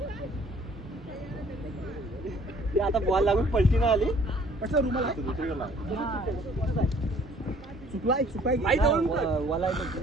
आता बॉल लागून पलटी नाही आली. रुमाल चुकलाय चुकाय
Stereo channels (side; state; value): both; normal; correlation 0.57